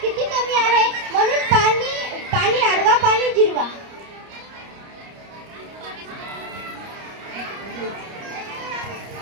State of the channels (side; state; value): left; late; 30 ms